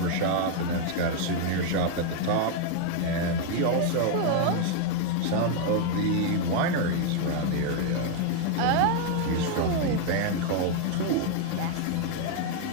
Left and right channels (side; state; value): both; different; correlation 0.00